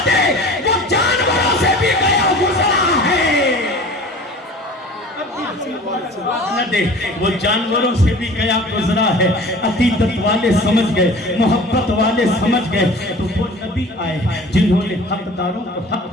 دے وہ جانوروں سے بھی گیا گزرا ہے، نہ دے وہ جانوروں سے بھی گیا گزرا ہے۔ عقیدت والے سمجھ گئے، محبت والے سمجھ گئے، تو وہ نبی آئے جنہوں نے حقداروں کو حق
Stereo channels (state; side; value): normal; both; correlation 0.42